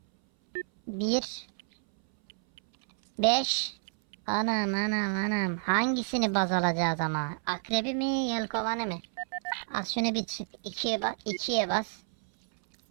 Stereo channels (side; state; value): left; silent; 58 dB below the other